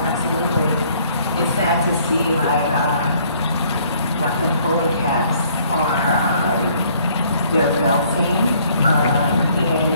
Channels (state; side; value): inverted; both; correlation -0.61